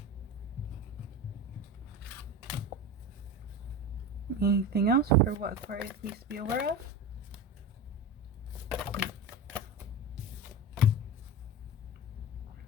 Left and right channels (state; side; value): normal; both; correlation 0.27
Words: Anything else for what Aquarius needs to be aware of?